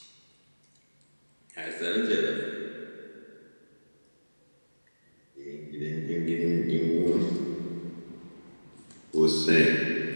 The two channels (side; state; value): both; inverted; correlation -1.00